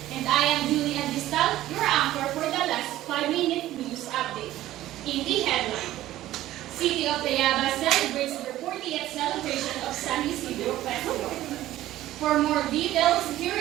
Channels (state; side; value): quieter; left; 14.6 dB